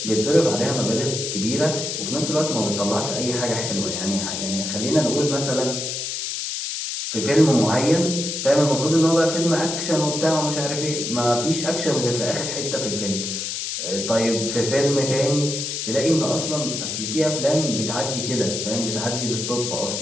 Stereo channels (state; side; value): noise; left; hiss, 4 dB below the sound